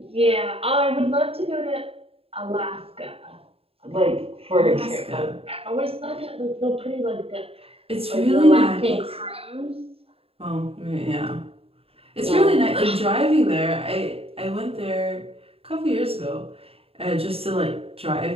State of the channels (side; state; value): left; late; 0.28 ms